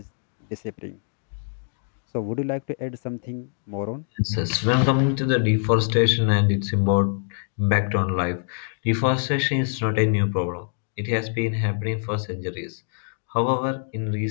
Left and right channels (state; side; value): silent; right; 61 dB below the other